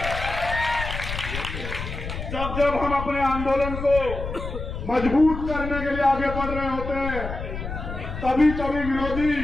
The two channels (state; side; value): noise; left; rumble, 7 dB below the sound